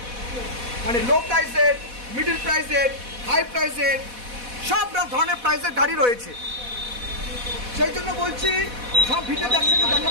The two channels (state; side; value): late; left; 4.1 ms